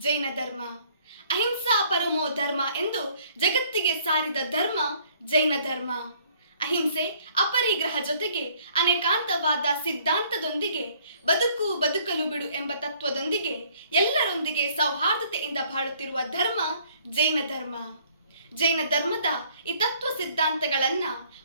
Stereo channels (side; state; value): both; inverted; correlation -0.60